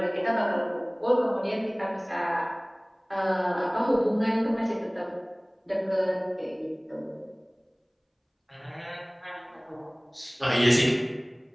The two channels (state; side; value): identical; both; correlation 1.00